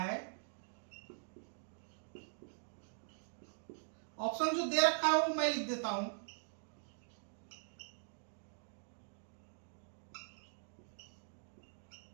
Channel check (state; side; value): silent; left; digital silence